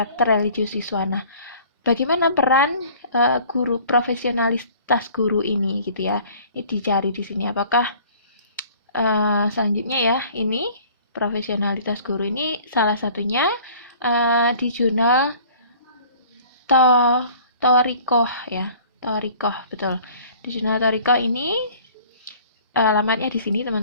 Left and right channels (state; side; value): inverted; both; correlation -0.50